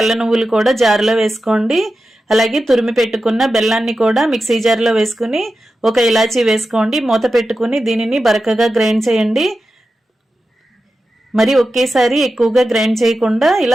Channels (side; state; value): both; normal; correlation 0.92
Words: నువ్వులు కూడా జార్లో వేసుకోండి. అలాగే తురిమి పెట్టుకున్న బెల్లాన్ని కూడా మిక్సీ జార్లో వేసుకుని 1 ఇలాచీ వేసుకోండి. మూత పెట్టుకుని దీనిని బరకగా గ్రైండ్ చేయండి. మరి ఒకేసారి ఎక్కువగా గ్రైండ్ చేయకుండా